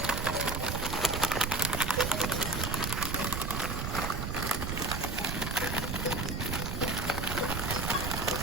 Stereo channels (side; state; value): right; noise; rumble, 2 dB below the sound